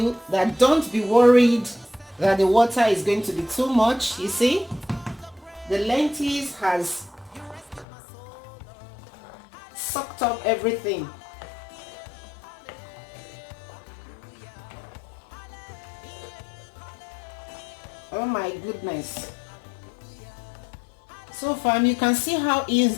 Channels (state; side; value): drops out; right; at 7.9 s